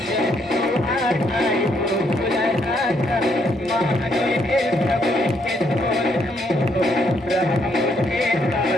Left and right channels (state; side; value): normal; both; correlation 0.72